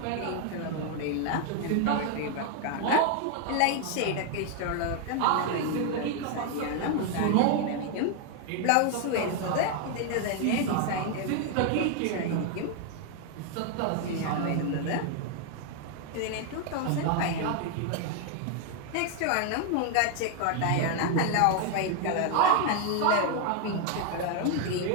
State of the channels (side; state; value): both; different; correlation 0.00